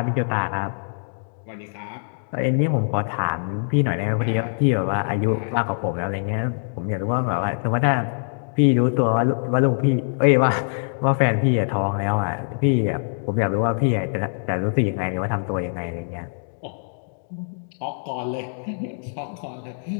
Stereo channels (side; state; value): right; silent; digital silence